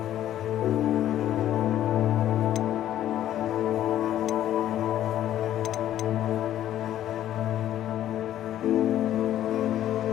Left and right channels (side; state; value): right; quieter; 12.1 dB